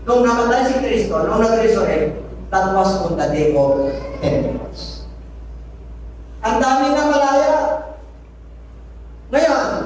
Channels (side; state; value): both; identical; correlation 1.00